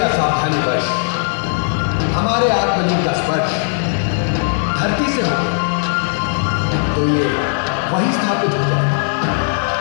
असावधानीवश हमारे आत्मलिंग का स्पर्श धरती से हो तो ये वहीं स्थापित हो जाए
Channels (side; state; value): right; silent; digital silence